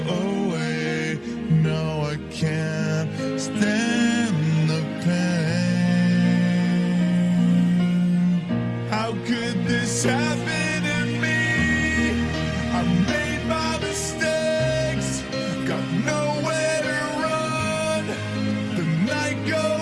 away. No, I can't stand the pain. How could this happen to me? I made my mistakes, got nowhere to run. The night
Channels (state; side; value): identical; both; correlation 1.00